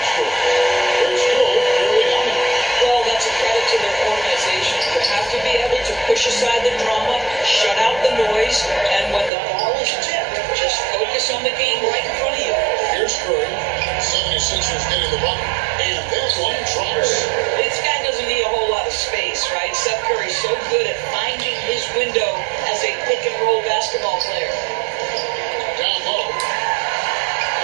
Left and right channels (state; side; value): drops out; left; at 9.3 s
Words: Here's Curry. 76ers getting the bucket. And that one drops. This guy doesn't need a whole lot of space, right? Seth Curry's so good at finding his window as a pick and roll basketball player. Down low.